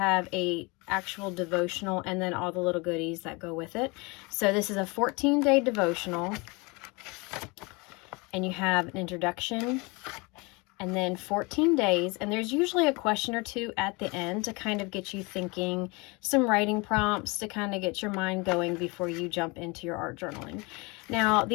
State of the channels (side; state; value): right; quieter; 27.2 dB